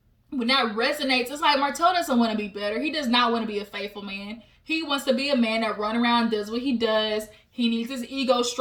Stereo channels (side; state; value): both; identical; correlation 1.00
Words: when that resonates, it's like Martell doesn't want to be better. He does not want to be a faithful man. He wants to be a man that run around, does what he does. He needs his ego